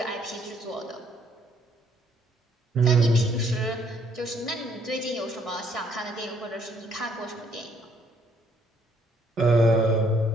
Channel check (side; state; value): both; normal; correlation 0.66